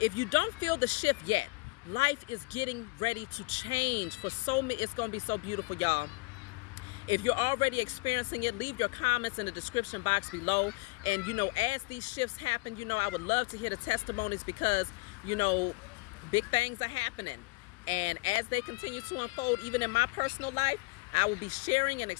if you don't feel the shift yet, life is getting ready to change for so many. It's going to be so beautiful, y'all. If you're already experiencing it, leave your comments in the description box below. And, as these shifts happen, I would love to hear the testimonies, because, big things are happening. And as they continue to unfold, even in my personal life, I will be sharing and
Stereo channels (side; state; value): right; quieter; 25.3 dB